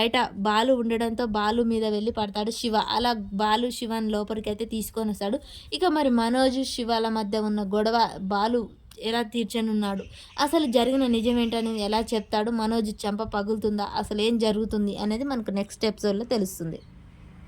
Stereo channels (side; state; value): both; identical; correlation 1.00